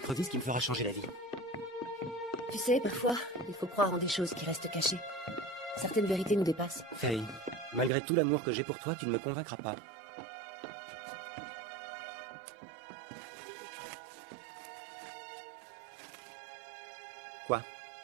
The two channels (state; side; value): drops out; left; at 7.9 s